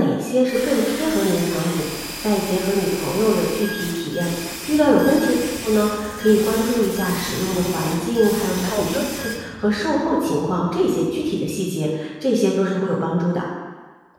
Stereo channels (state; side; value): identical; both; correlation 1.00